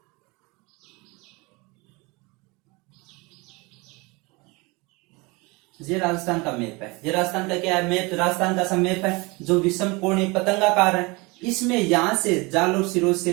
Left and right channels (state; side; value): quieter; left; 26.0 dB